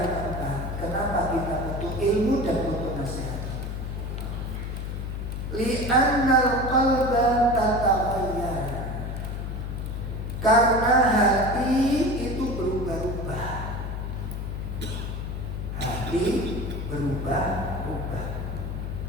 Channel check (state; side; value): noise; left; hum, 4 dB below the sound